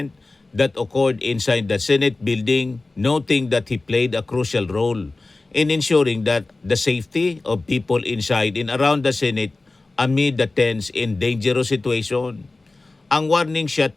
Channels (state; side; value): quieter; right; 3.3 dB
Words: that occurred inside the Senate building, noting that he played a crucial role in ensuring that the safety of people inside and around the Senate amid the tense and dangerous situation. Ang warning shot